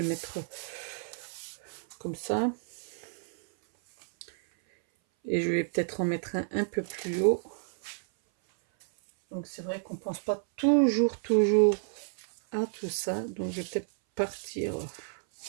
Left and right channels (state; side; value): silent; left; 56 dB below the other